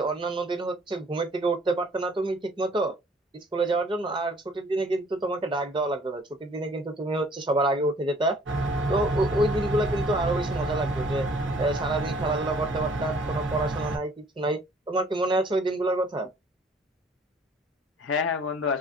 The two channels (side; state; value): both; normal; correlation 0.57